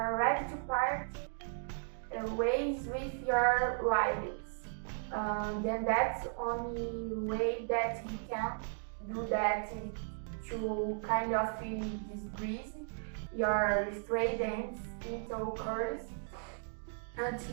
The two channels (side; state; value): left; silent; digital silence